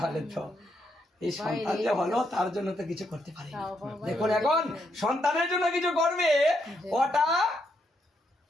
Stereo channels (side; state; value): both; normal; correlation 0.78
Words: তো এই সন্তান যে হলো তার জন্য তো কিছু করতে পারি না। দেখুন, এখন সন্তানের জন্য কিছু করবে, ওটা